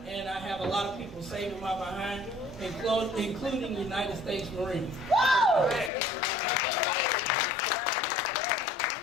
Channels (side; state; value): right; drops out; at 5.9 s